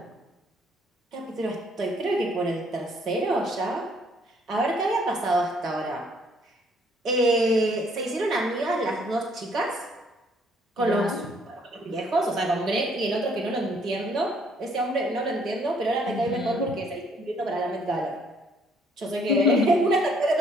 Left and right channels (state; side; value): normal; both; correlation 0.64